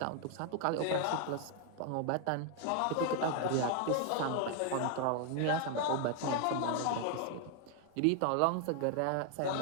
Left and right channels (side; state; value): both; different; correlation 0.00